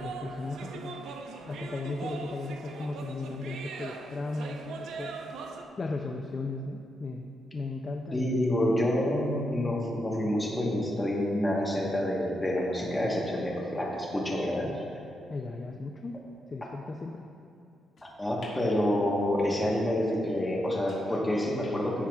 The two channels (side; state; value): both; normal; correlation 0.84